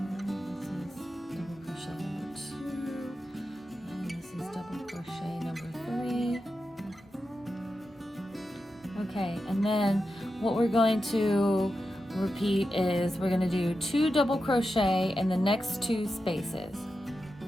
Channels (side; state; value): both; normal; correlation 0.90